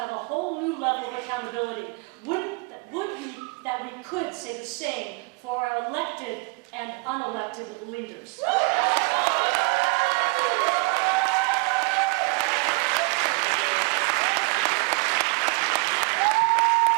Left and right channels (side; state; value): left; quieter; 29.7 dB